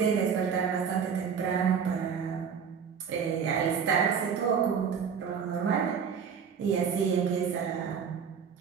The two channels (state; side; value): quieter; left; 6.8 dB